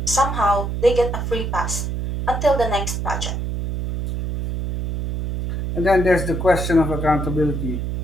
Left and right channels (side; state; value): right; noise; hum, 3 dB below the sound